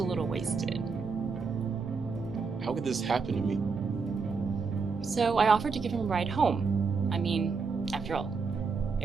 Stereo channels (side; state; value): left; quieter; 4.9 dB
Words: little wasted. How could this happen to me? So I offered to give him a ride home. I mean, after all,